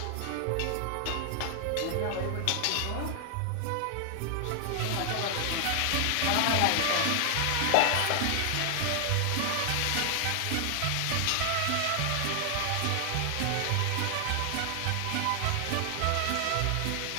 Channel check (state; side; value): different; both; correlation 0.00